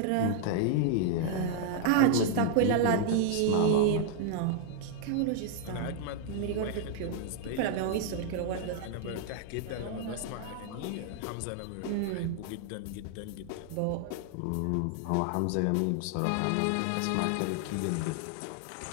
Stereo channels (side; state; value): both; different; correlation -0.01